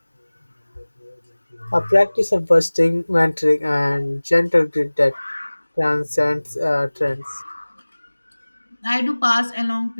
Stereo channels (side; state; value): both; inverted; correlation -1.00